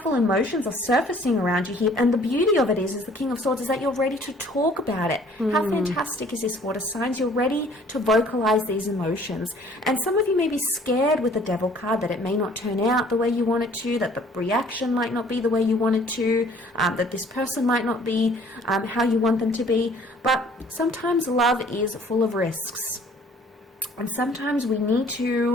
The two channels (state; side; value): normal; both; correlation 0.55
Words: emotions are surfacing around you here, and the beauty of it is the King of Swords, is that you're ready to talk about it. How fantastic is this, water signs? You're ready to vocalize these emotions. And some of you may be scared with the Devil card that it may not turn out the way you want it to, that the reaction might not be the way you want it to, that this person might not be how you want them to be. But sometimes love is full of risks, and sometimes we need